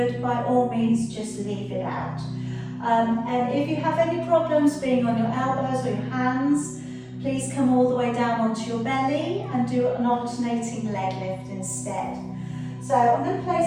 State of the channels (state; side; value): identical; both; correlation 1.00